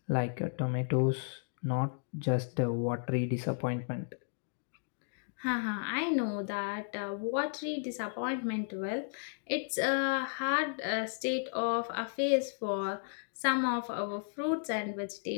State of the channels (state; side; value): silent; right; digital silence